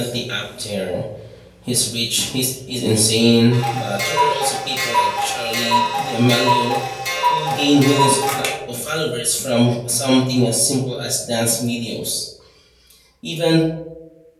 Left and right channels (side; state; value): both; identical; correlation 1.00